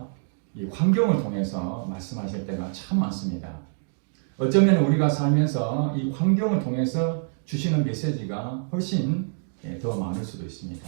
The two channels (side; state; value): left; silent; digital silence